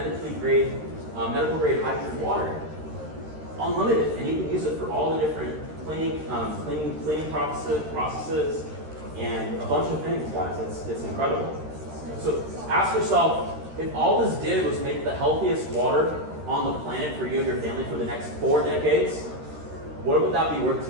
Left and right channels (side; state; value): left; late; 13 ms